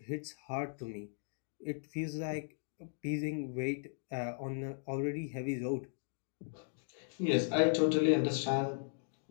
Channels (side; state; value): right; silent; digital silence